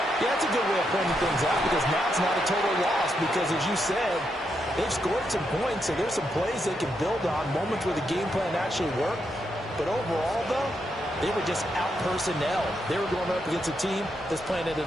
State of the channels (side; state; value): both; normal; correlation 0.81